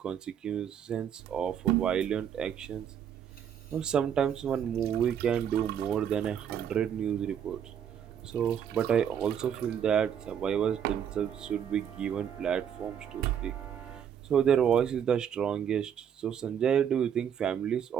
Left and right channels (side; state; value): left; quieter; 8.7 dB